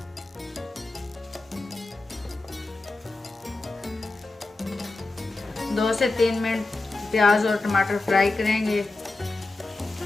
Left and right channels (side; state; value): right; quieter; 3.2 dB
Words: 2 से 3 मिनट प्याज और टमाटर फ्राई करेंगे।